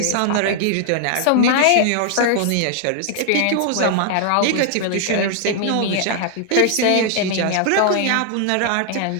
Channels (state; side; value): different; both; correlation 0.00